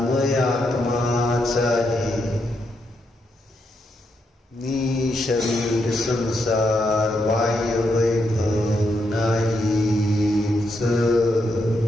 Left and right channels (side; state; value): both; normal; correlation 0.80